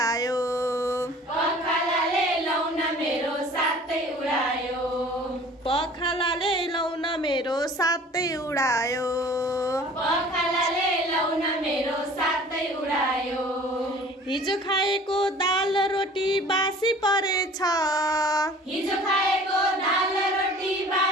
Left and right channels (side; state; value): both; normal; correlation 0.48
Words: पखालाले लौन मेरो साथै उडायो पखालाले लौन मेरो साथै उडायो पखालाले लौन मेरो साथै उडायो हिजो खाएको दाल रोटी बासी परेछ हिजो खाएको दाल रोटी